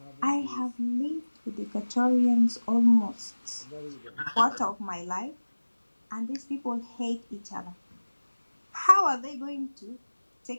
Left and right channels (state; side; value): inverted; both; correlation -1.00